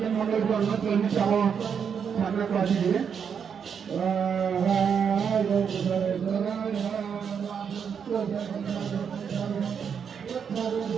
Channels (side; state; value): left; quieter; 7.1 dB